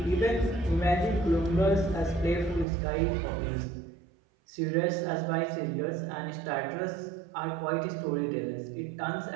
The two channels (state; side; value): drops out; left; at 2.7 s